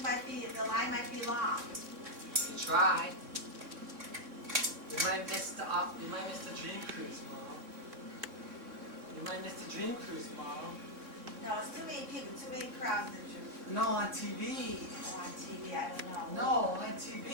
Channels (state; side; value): late; left; 3.6 ms